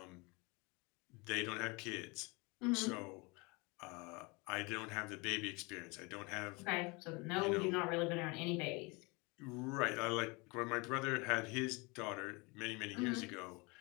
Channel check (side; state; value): right; quieter; 27.5 dB